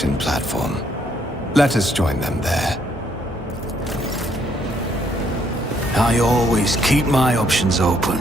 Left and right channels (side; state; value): both; normal; correlation 0.70